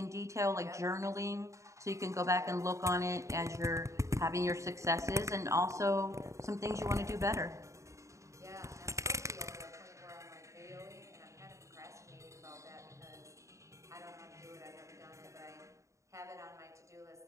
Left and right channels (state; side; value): late; left; 0.15 ms